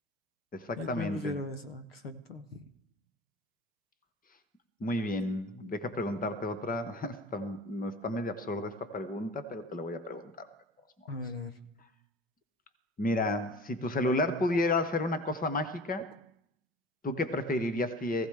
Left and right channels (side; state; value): both; normal; correlation 0.41